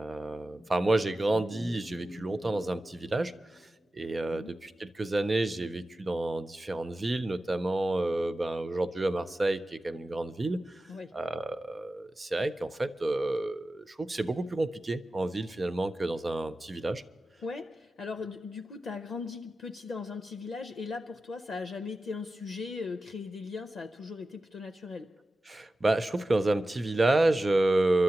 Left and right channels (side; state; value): both; normal; correlation 0.94